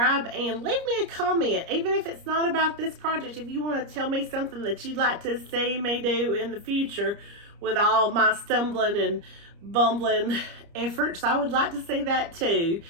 and leave me a comment. Even if it's not about this project, if you want to tell me something that you'd like to see me do in the future with all my stumbling and bumbling efforts, I would like to see that too.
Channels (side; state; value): left; late; 30 ms